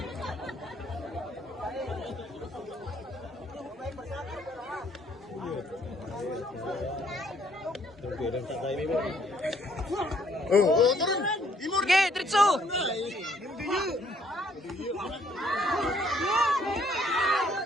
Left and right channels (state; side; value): normal; both; correlation 0.66